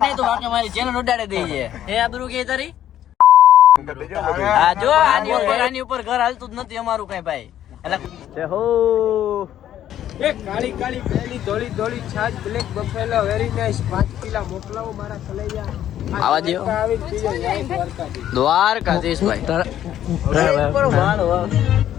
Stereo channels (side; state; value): right; quieter; 11.4 dB